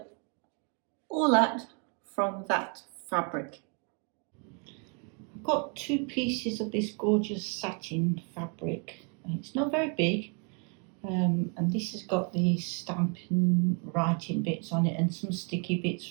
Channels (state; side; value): quieter; left; 37.6 dB